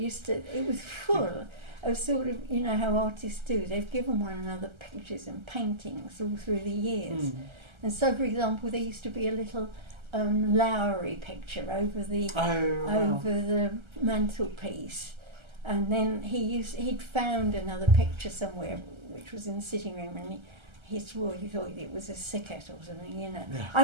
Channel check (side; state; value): left; late; 1.3 ms